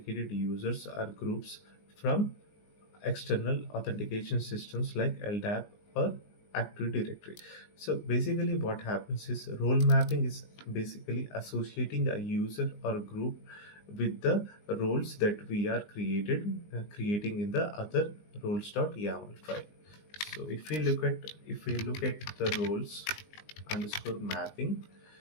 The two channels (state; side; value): late; right; 19 ms